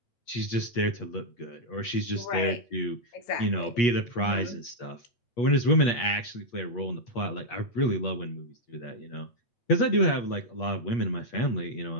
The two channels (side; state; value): right; late; 8.4 ms